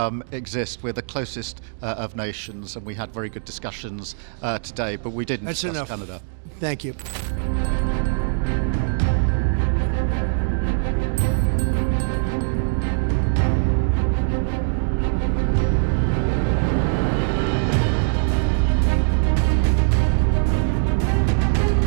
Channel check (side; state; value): left; silent; digital silence